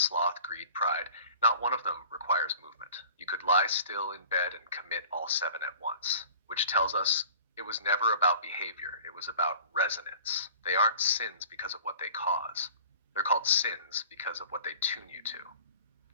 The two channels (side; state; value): both; inverted; correlation -0.44